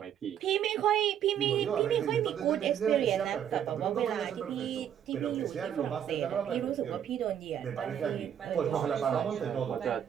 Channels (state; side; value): quieter; left; 9.5 dB